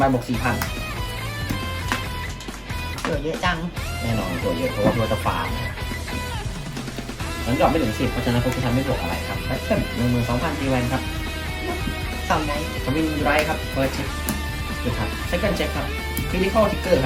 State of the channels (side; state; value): both; identical; correlation 1.00